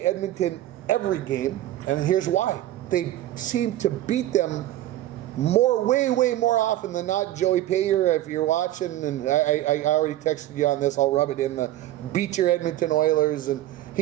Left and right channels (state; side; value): quieter; left; 14.1 dB